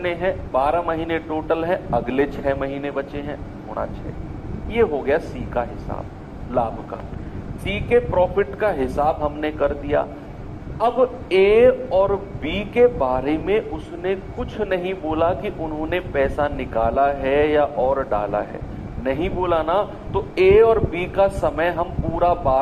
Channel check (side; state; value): both; identical; correlation 1.00